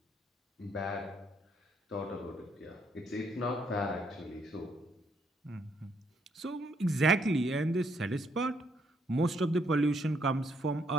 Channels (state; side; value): normal; both; correlation 0.72